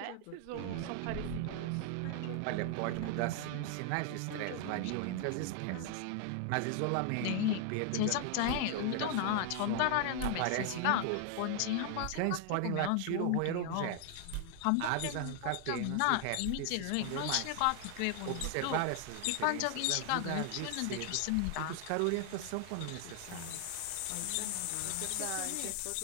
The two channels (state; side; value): different; both; correlation 0.00